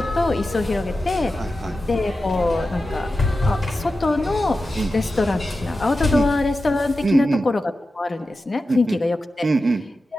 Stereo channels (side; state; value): both; normal; correlation 0.92